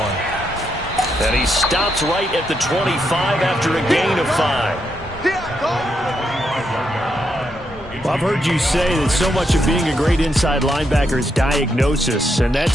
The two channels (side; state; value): both; normal; correlation 0.80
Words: And he stops right at the 25 after a gain of 5. Well, I've heard you say that so much of being a great inside linebacker is diagnosis. And that